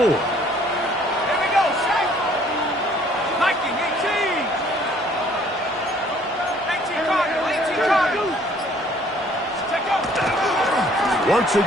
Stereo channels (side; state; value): both; normal; correlation 0.59